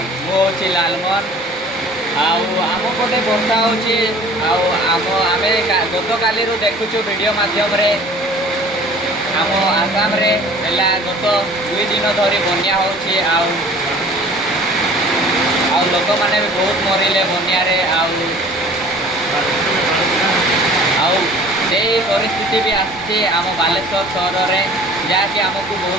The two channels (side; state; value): both; normal; correlation 0.48